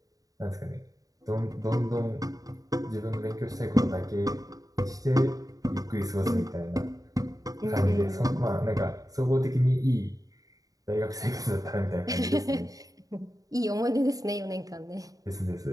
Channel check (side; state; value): left; late; 0.17 ms